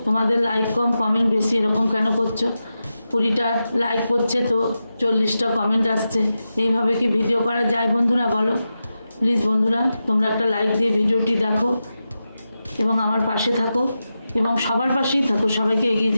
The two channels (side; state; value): both; inverted; correlation -0.91